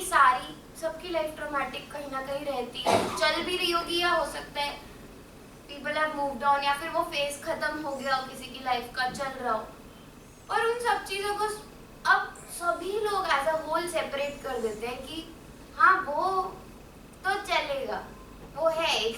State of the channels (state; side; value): identical; both; correlation 1.00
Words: सारी, सबकी लाइफ ट्रॉमेटिक कहीं ना कहीं रहती है, चल भी रही होगी, या हो सकता है पीपल हैव मूव्ड ऑन, या फिर वो फेज खत्म हो गया हो किसी की लाइफ का, चल रहा हो। और उन सब चीज़ों को अब सभी लोग एज अ होल सेपरेट कर देते हैं कि हाँ वो तो चलेगा, वो है,